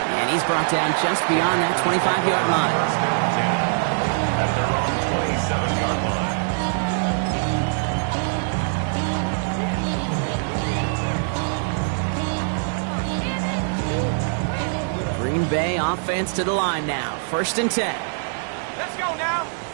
He's brought down just beyond that 25-yard line. At their own 27-yard line. Green Bay offense to the line now. 1st and 10. Let's go now.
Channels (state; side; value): silent; left; digital silence